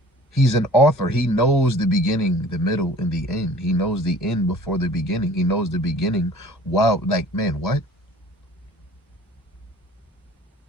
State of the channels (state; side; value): normal; both; correlation 0.48